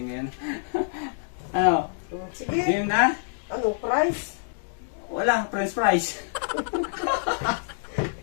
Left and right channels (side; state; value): right; silent; digital silence